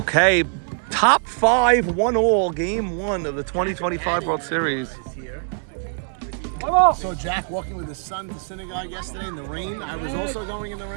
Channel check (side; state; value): left; silent; digital silence